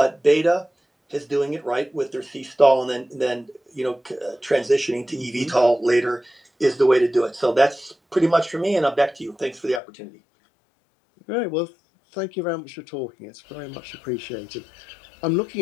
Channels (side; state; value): right; drops out; at 9.8 s